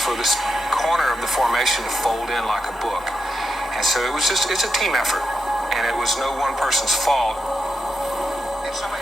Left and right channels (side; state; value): both; normal; correlation 0.85